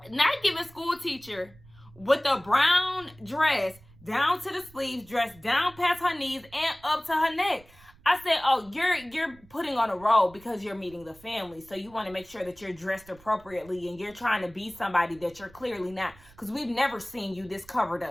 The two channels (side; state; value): right; noise; rumble, 24 dB below the sound